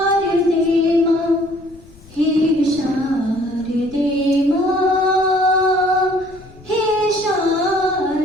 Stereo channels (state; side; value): noise; left; rumble, 23 dB below the sound